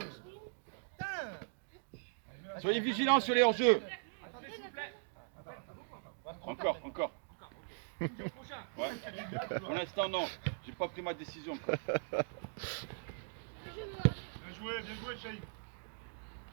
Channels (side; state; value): left; silent; digital silence